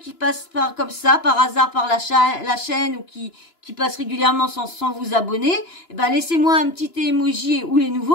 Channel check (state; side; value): late; right; 2.9 ms